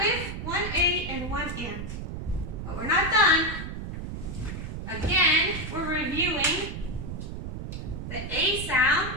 reviewing the A sound,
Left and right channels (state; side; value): noise; right; rumble, 7 dB below the sound